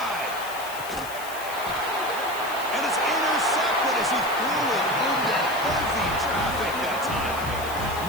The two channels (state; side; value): noise; left; hiss, 13 dB below the sound